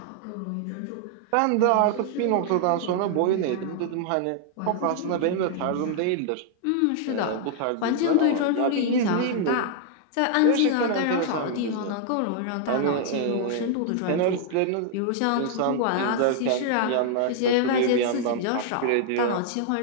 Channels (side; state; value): both; different; correlation 0.00